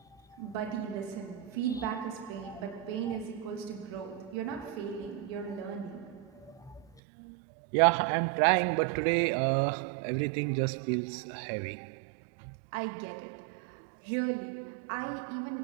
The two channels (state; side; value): drops out; left; at 7.0 s